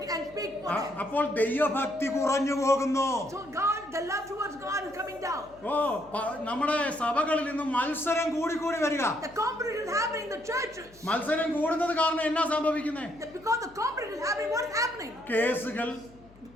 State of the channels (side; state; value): left; noise; hum, 25 dB below the sound